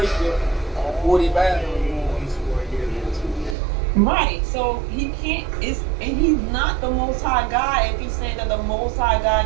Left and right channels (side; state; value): left; drops out; at 3.6 s